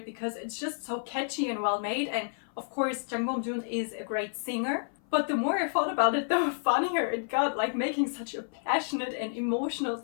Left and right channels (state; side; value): silent; right; 56 dB below the other